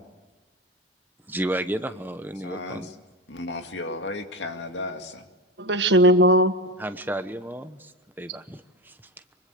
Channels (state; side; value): normal; both; correlation 0.20